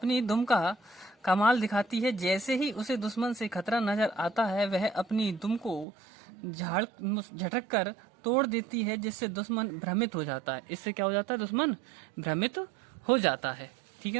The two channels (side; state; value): left; drops out; at 5.9 s